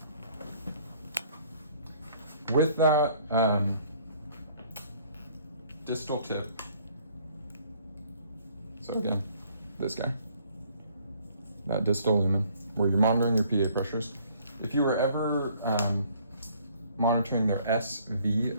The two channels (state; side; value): inverted; both; correlation -0.61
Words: With that distal tip, so again, this guy, that distal lumen, where you're monitoring your PA pressures. If you were ever monitoring their